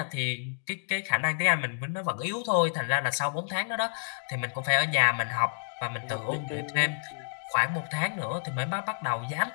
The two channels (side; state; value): right; silent; digital silence